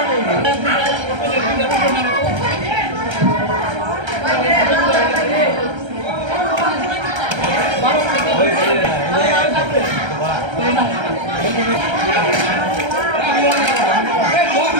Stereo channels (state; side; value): late; left; 1.3 ms